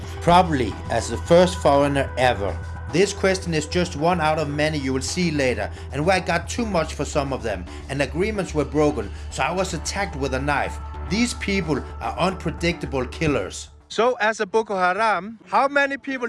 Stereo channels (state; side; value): identical; both; correlation 1.00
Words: Probably as the first foreigner ever. This question is just one out of many you will see later, and where I got too much for some of them, and agreements were broken, so I was attacked with a knife. These people are unpredictable killers. So, as a Boko Haram, how many people